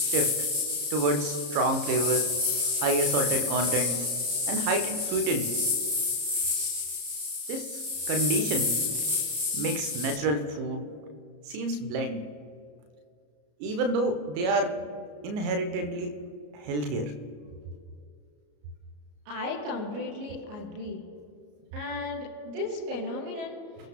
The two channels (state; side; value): late; left; 33 ms